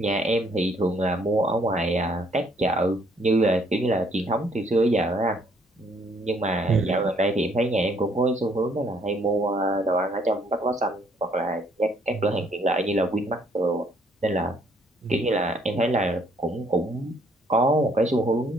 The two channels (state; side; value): normal; both; correlation 0.65